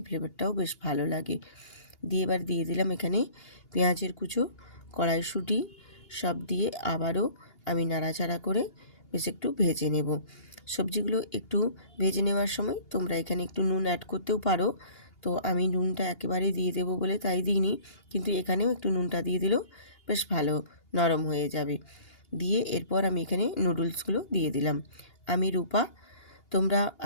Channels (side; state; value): right; late; 2.8 ms